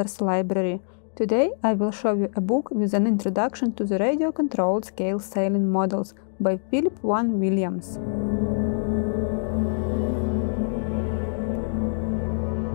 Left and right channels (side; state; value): right; silent; digital silence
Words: Library. Today I will show you a book with an introduction to the radio-controlled scale sailing models by Phillip Vaughan Williams.